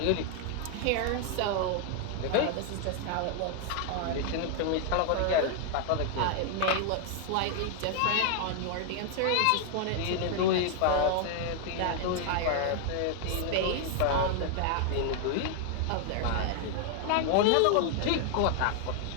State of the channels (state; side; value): different; both; correlation 0.00